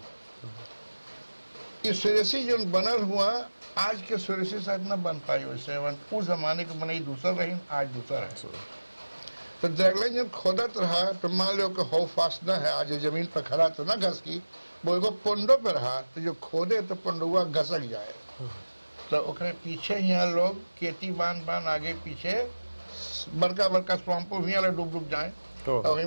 ये सुरेसी जो बनल हुआ आज के सुरेसी शायद न बन पाई वैसे उस जमाने के बनाई दूसरा रही आज दूसरा है तो ड्रैगलाइन जब खोदत रहा तो मान लो कि हो फास्ट न है आज जमीन पर खड़ा तो ना घस की वो एगो पोंडो पे रहा तो जो खोदे तो पोंडुआ घसक जाए तो ओकरे पीछे यहाँ लोग खेती बांध आगे पीछे बड़का बड़का स्वाम्पो भी डूब जाए और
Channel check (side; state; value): both; inverted; correlation -1.00